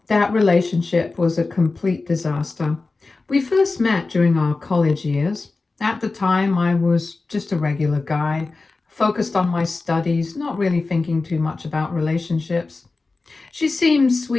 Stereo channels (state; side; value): quieter; right; 3.7 dB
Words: that relationship was a complete disaster. We first met during our college years. At the time, I was just a regular guy, focused on my studies, not really thinking too much about relationships. She seemed